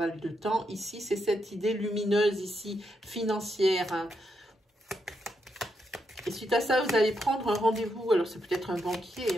de temps, ici, c'est cette idée lumineuse, ici, financière. Hein. Et suite à ça, vous allez prendre un rendez-vous. Alors, c'est peut-être un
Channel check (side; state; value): both; normal; correlation 0.81